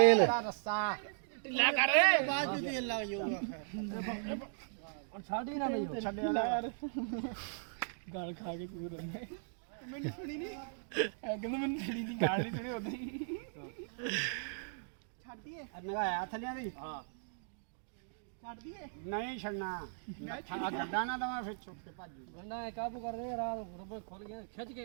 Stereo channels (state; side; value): silent; left; digital silence